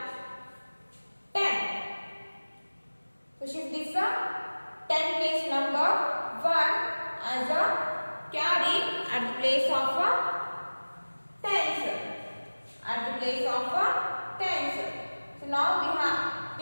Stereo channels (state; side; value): inverted; both; correlation -1.00